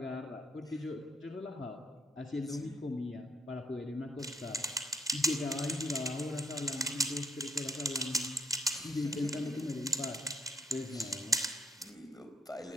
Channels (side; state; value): both; normal; correlation 0.72